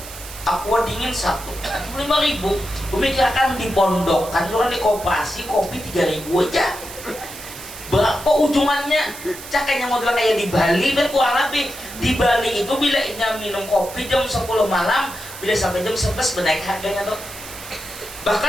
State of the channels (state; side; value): noise; right; hiss, 13 dB below the sound